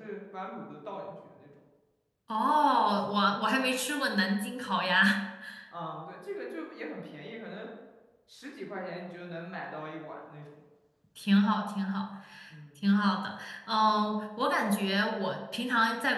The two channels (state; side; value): identical; both; correlation 1.00